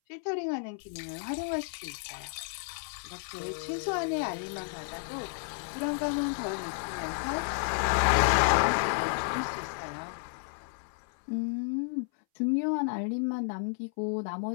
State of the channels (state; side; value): silent; right; 57 dB below the other